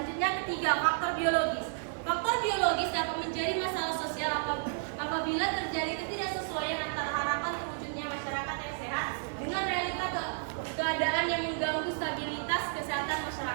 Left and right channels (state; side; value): silent; left; digital silence